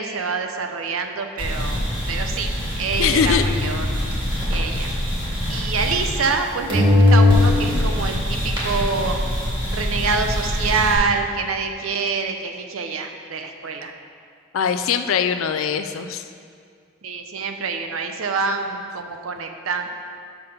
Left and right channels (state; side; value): normal; both; correlation 0.44